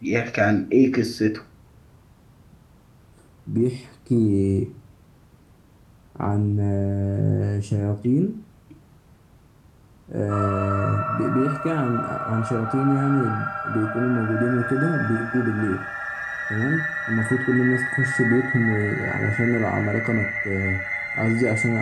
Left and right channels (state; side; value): identical; both; correlation 1.00